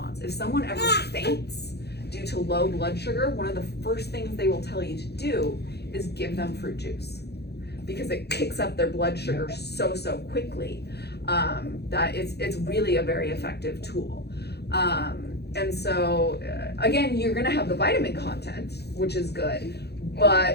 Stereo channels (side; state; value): right; late; 0.48 ms